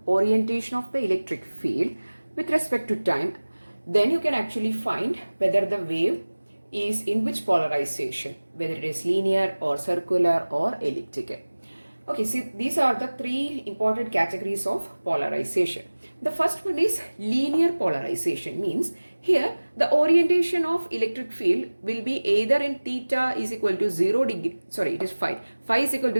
orientation of the electric field with respect to time, then you can actually find whether the wave is in which polarization, whether it is linear or circular or elliptical. Okay, see, these are the three important categories of polarization. The first one is linear polarization, means here the orientation of electric field will be either in theta is equal to 0 degree, sorry, it is phi is equal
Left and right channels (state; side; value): inverted; both; correlation -1.00